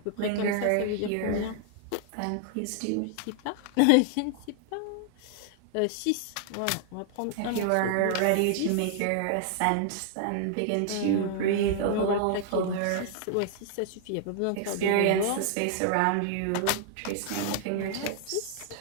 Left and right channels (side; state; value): both; different; correlation -0.01